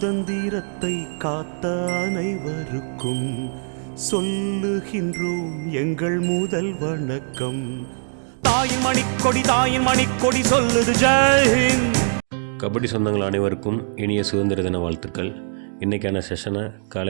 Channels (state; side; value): silent; left; digital silence